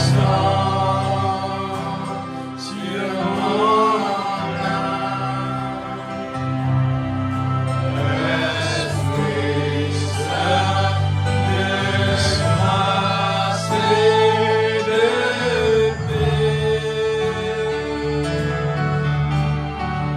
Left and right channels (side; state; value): both; identical; correlation 1.00